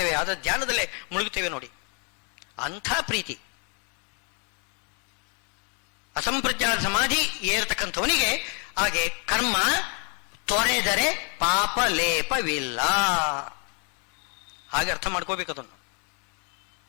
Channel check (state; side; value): quieter; right; 37.5 dB